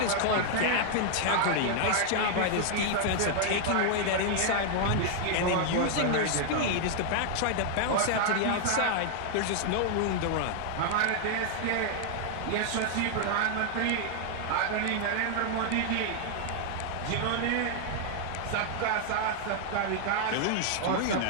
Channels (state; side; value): different; both; correlation 0.00